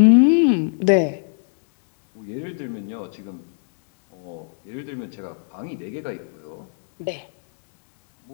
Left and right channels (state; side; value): silent; right; digital silence